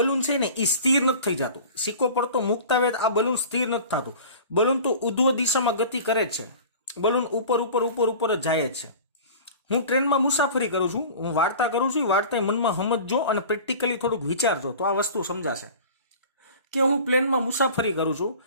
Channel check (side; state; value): both; inverted; correlation -0.40